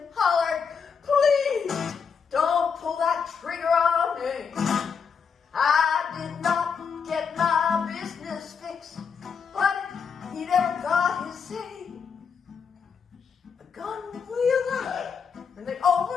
hollered, "Please don't pull that trigger on me. I did not get my business fixed, but he never got his say." The gun wheeled out in the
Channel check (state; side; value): quieter; right; 6.2 dB